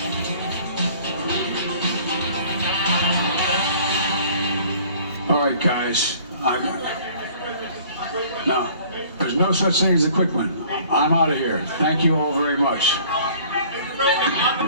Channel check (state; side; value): inverted; both; correlation -0.53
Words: All right, guys. No, there's no such thing as a quick one. I'm out of here. Thank you all very much.